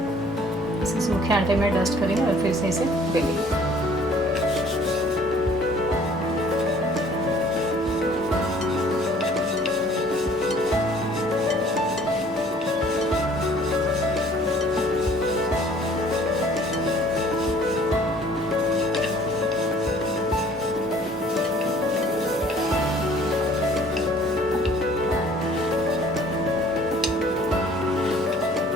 इसे सूखे आटे में डस्ट करेंगे और फिर से इसे बेलेंगे।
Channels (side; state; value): both; normal; correlation 0.55